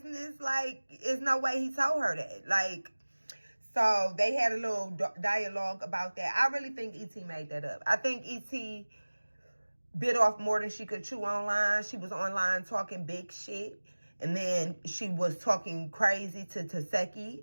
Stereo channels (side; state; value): both; inverted; correlation -1.00